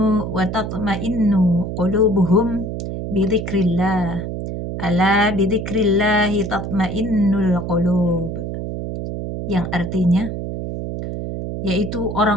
wa tatma'innu qulubuhum bidzikrillah. Ala bidzikrillahi tatma'innul qulub. Yang artinya yaitu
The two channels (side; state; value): right; noise; hum, 5 dB below the sound